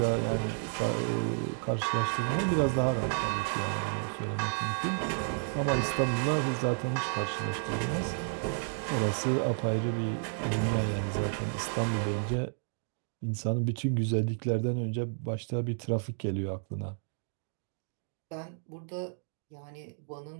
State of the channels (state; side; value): silent; left; 57 dB below the other